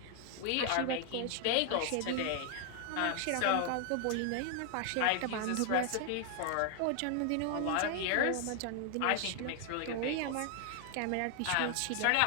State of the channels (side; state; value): both; different; correlation 0.00